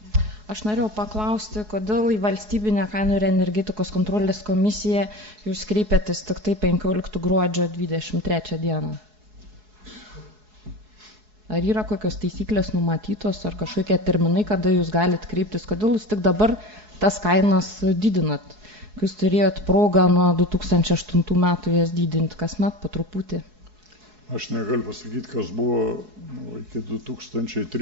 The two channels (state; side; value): late; left; 4.7 ms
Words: Aš norėjau paklausti, kodėl į valstybinę kainų ir energetikos kontrolės komisiją jūs kreipėtės tik tai 15 gruodžio 23 dieną. Ar yra kokios taisyklės numatytos, ar kažkokie terminai, kada jūs galite kreiptis, kodėl jūs tik dabar tas kainas didinat, kai jūs turėjot progą nuo 2008 metų jas didinti kasmet po truputį? Aš negaliu pasakyti, kas buvo iki